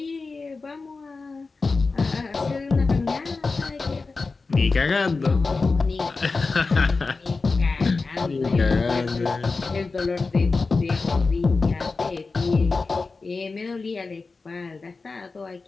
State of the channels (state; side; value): quieter; right; 4.0 dB